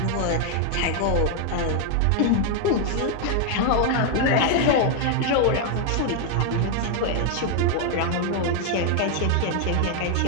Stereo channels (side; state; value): both; different; correlation 0.01